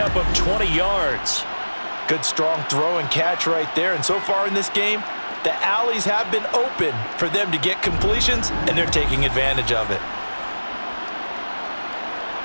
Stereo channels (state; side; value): inverted; both; correlation -1.00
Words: of 20 yards. Good strong throw and catch right there. And so far in this game, the alleys have been open for them to get completions, and they're taking advantage of it.